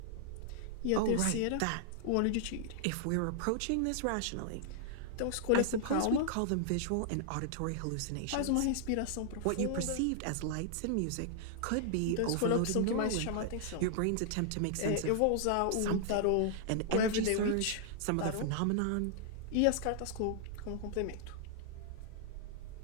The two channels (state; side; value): different; both; correlation -0.01